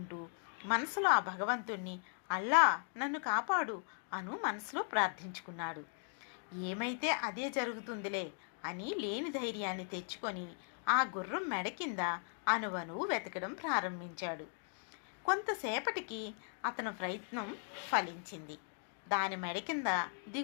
మనసులో ఆ భగవంతుణ్ణి అల్లా నన్ను కాపాడు అను మనసులో ప్రార్థించుకున్నాడు. ఏమైతే అదే జరుగుతుందిలే అని లేని ధైర్యాన్ని తెచ్చుకొని ఆ గుర్రం మెడ కింద అణువణువు వెతకడం ప్రారంభించాడు. కొంతసేపటికి అతని ప్రయత్నం ఫలించింది. దాని మెడ కింద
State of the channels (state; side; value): silent; right; 52 dB below the other